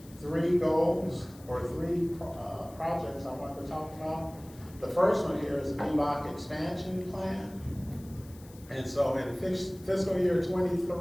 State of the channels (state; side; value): noise; left; hiss, 23 dB below the sound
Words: three goals or three projects I wanted to talk about. The first one here is the VBOC expansion plan. And so in fiscal year